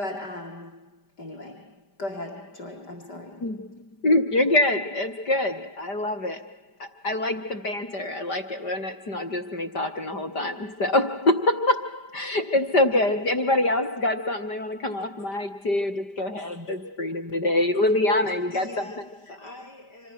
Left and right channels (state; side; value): late; right; 5.1 ms